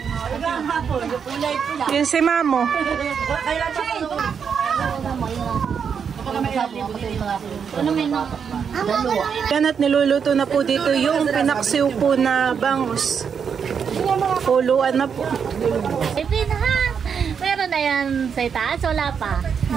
Yun si Mamo. Yan at niluluto na po dito yung pinaksiw po na bangus. Puluan na po. Ipin ha! Meron na yan sa itaas, wala pa.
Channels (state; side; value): quieter; left; 6.9 dB